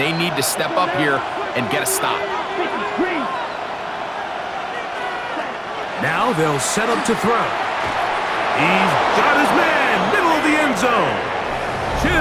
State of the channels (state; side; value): identical; both; correlation 1.00